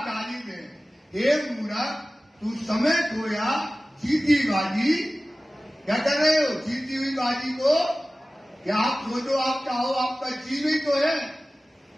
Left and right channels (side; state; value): both; normal; correlation 0.97